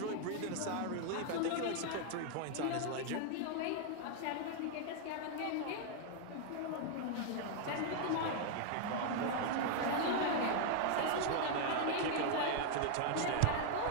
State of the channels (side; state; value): both; different; correlation 0.00